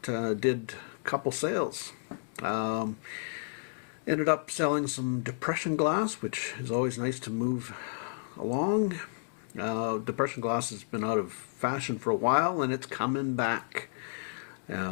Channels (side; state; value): right; silent; digital silence